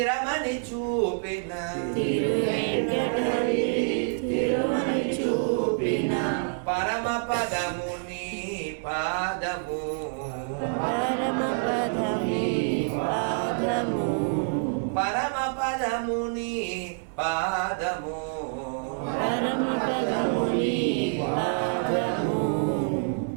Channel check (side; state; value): left; silent; digital silence